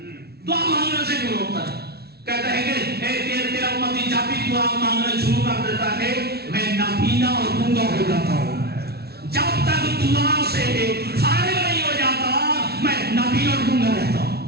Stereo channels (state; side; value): late; left; 0.46 ms